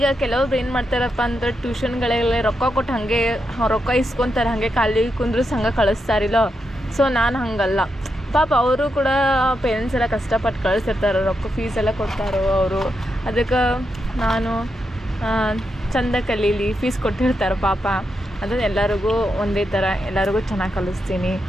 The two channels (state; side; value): normal; both; correlation 0.84